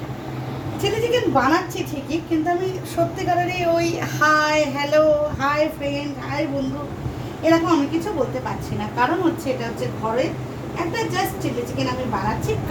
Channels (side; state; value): both; identical; correlation 1.00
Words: Chilli chicken বানাচ্ছি ঠিকই, কিন্তু আমি সত্যিকারেরই ওই hi hello, hi friend, hi বন্ধু এরকম আমি কিছু বলতে পারছি না। কারণ হচ্ছে এটা হচ্ছে ঘরে একটা জাস্ট চিলি চিকেন আমি বানাচ্ছি।